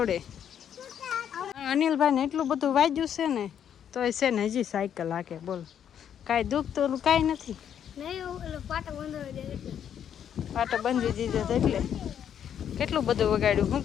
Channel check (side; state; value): right; quieter; 9.0 dB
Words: અનિલભાઈ ને એટલું બધું વાગ્યું છે ને તો છે ને હજી સાયકલ હાકે બોલ કાંઈ દુઃખ તો કાંઈ નથી. પાટો બંધી દીધો એટલે કેટલું બધું વગાડ્યું. શું